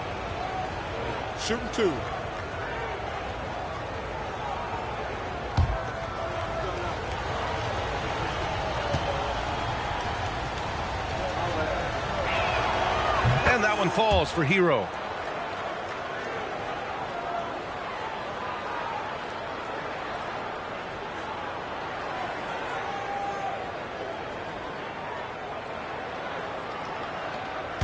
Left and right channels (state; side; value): identical; both; correlation 1.00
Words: Shooting 2. And that one falls for Hero.